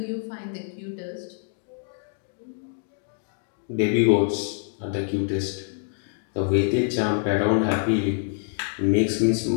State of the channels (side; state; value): right; silent; 61 dB below the other